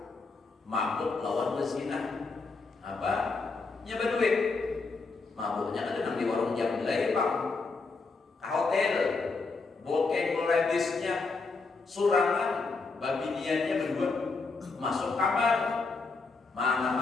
Mabuk lawan berzina. Apa? Nyebar duit. Mabuknya kan nang di warung jam belai Pak. Ke hotel. Bokeng melebisnya surangan, babiniannya berdua masuk kamar. Mana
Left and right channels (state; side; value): quieter; right; 4.1 dB